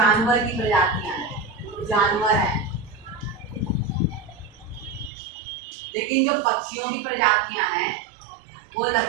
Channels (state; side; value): drops out; left; at 5.1 s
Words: की प्रजातियां हैं, जानवर हैं। लेकिन जो पक्षियों की प्रजातियां हैं वो